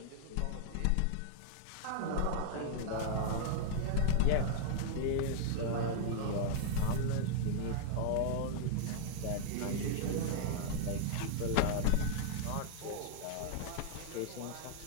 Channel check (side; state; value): both; different; correlation -0.01